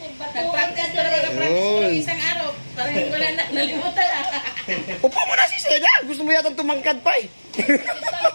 ko na ng isang araw. Parang hindi ko na nalimutan. Upo mo na si Seda. Gusto mo yata tumangkad pa eh.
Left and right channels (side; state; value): both; inverted; correlation -1.00